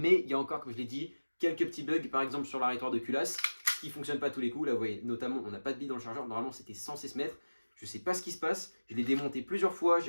il y a encore, comme je l'ai dit, quelques petits bugs, par exemple sur l'arrêtoir de culasse, qui fonctionne pas tous les coups. Là, vous voyez, notamment, on n'a pas de billes dans le chargeur. Normalement, c'était censé se mettre. Je sais pas ce qui se passe. Je l'ai démonté plusieurs fois.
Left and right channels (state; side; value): inverted; both; correlation -1.00